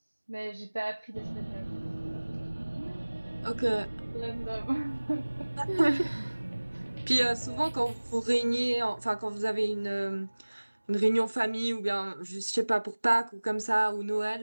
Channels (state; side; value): inverted; both; correlation -1.00